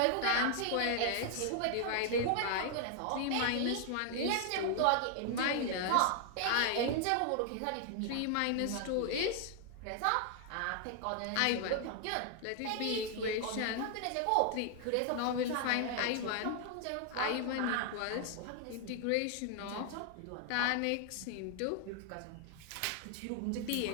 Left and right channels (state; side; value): different; both; correlation 0.00